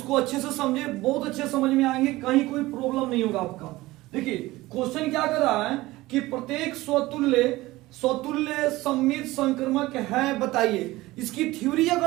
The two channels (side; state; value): left; quieter; 18.8 dB